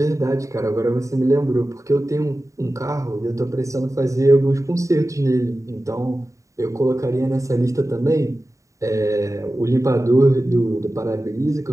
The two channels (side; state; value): left; late; 0.16 ms